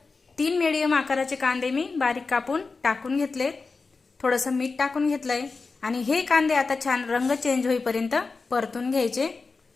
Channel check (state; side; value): quieter; right; 4.2 dB